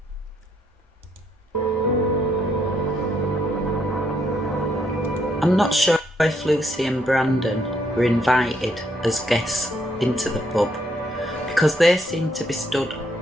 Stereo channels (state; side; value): normal; both; correlation 0.73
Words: I'm not sure if Lucy and Brandon were invited as guests into the pub, because they seemed to be stood